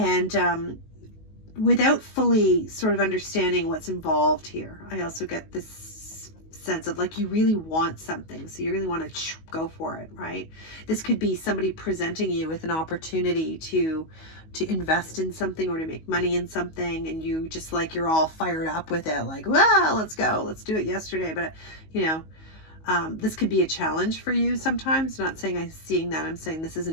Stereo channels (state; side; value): late; right; 19 ms